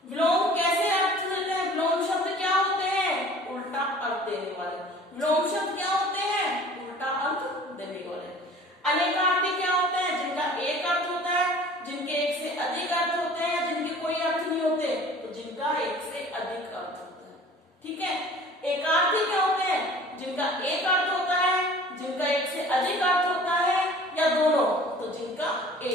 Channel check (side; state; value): both; normal; correlation 0.47